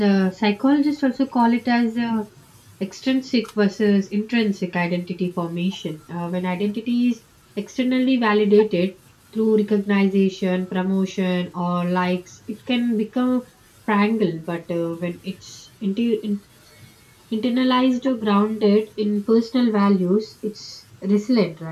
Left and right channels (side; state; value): both; identical; correlation 1.00